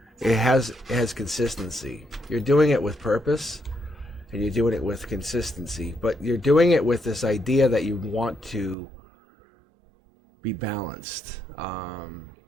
It has consistency. You're doing it with purpose, and you're doing it with consistency, but you're doing it with this idea that you want to be balanced.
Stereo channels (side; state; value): left; drops out; at 8.8 s